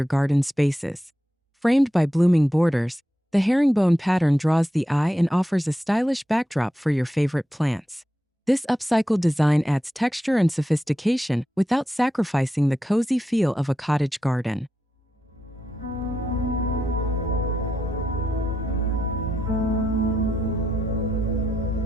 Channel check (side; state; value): both; normal; correlation 0.86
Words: garden spaces. Framed by blooming borders, the herringbone pattern draws the eye and offers a stylish backdrop for your favorite plants. This upcycled design adds texture and sophistication without sacrificing the cozy feel of a cottage garden.